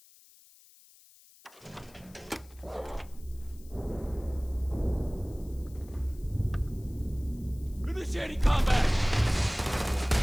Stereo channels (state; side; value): noise; left; hiss, 25 dB below the sound